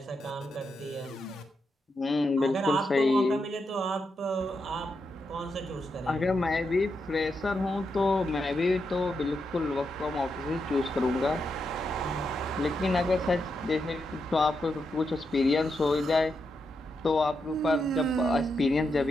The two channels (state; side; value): normal; both; correlation 0.84